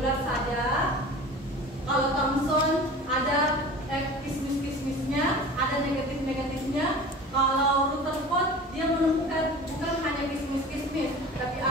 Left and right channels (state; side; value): normal; both; correlation 0.38